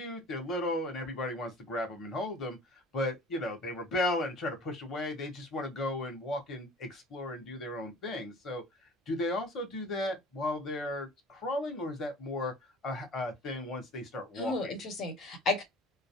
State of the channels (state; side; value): normal; both; correlation 0.44